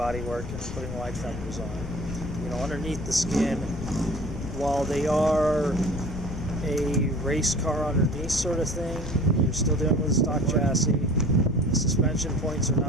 and putting wide fenders on. You know, underneath the skin, while they are a race car underneath sort of thing, you're still dealing with a stock chassis. The suspension points are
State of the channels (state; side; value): noise; left; rumble, 7 dB below the sound